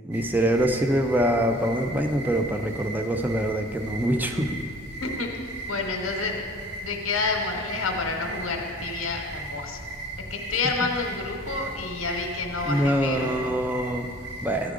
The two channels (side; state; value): both; normal; correlation 0.48